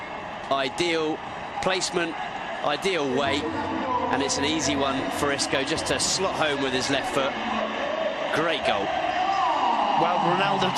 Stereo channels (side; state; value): both; identical; correlation 1.00